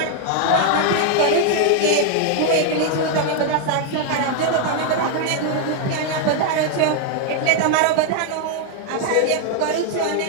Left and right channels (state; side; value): different; both; correlation 0.00